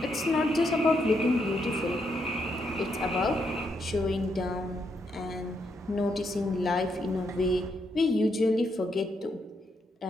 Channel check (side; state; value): both; normal; correlation 0.78